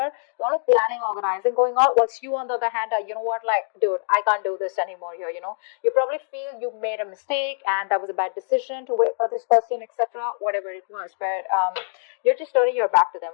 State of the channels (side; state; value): right; silent; digital silence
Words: A lot of planning, organizing going on. Whilst you, on the other hand, are, like, dude, I can't do this anymore here, You probably feel you made a mistake and that was a bad decision to wait for this person, etc. Whatever it was. But you're just turning your back to them,